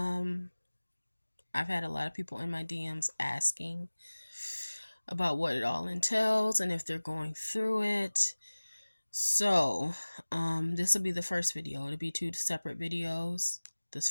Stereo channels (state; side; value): inverted; both; correlation -1.00